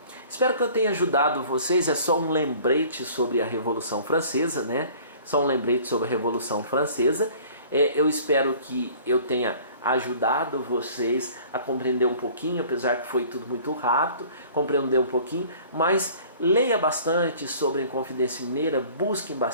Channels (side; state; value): both; inverted; correlation -0.49